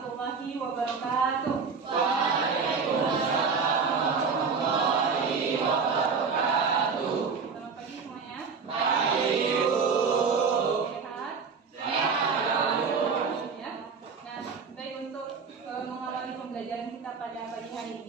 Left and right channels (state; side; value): quieter; left; 5.3 dB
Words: wabarakatuh. Waalaikumsalam warahmatullahi wabarakatuh. Selamat pagi semuanya. Pagi, Bu. Sehat? Sehat, Bu. Ya. Nah, baik, untuk mengawali pembelajaran kita pada pagi hari